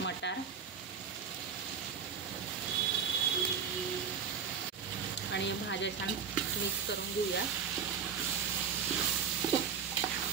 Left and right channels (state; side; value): quieter; left; 6.8 dB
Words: आणि भाज्या छान मिक्स करून घेऊया।